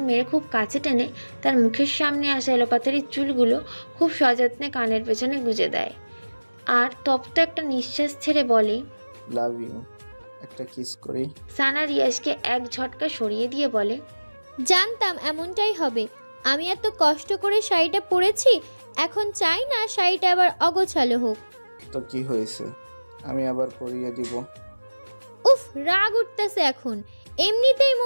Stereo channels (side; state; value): both; inverted; correlation -1.00